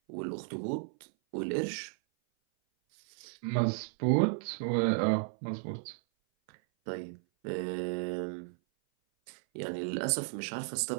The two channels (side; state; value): left; silent; 55 dB below the other